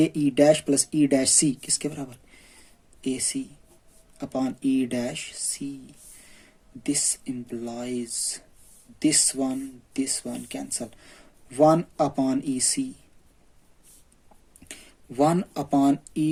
E dash plus E dash C किसके बराबर? A C upon E dash C. This implies this one cancel, 1 upon EC, 1 upon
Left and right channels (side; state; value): both; identical; correlation 1.00